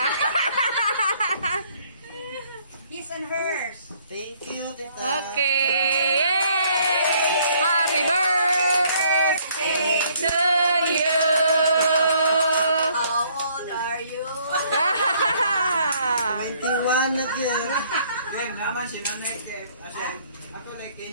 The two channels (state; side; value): inverted; both; correlation -0.64